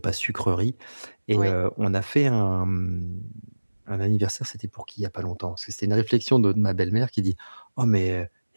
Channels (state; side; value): inverted; both; correlation -1.00